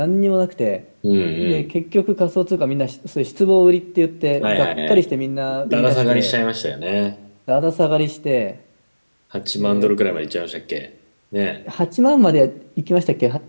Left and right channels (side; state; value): both; inverted; correlation -1.00